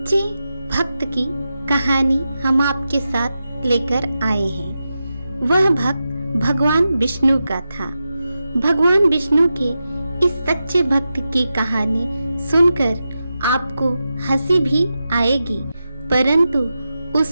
भक्त की कहानी हम आपके साथ लेकर आए हैं। वह भक्त भगवान विष्णु का था। भगवान विष्णु के इस सच्चे भक्त की कहानी सुनकर आपको हंसी भी आएगी, परंतु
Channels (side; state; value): both; inverted; correlation -0.90